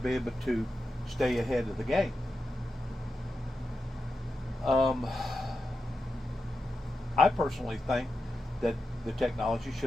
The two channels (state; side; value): normal; both; correlation 0.89